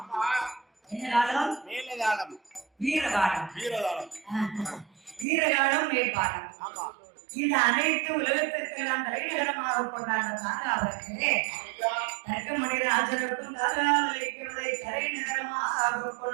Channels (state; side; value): drops out; left; at 5.2 s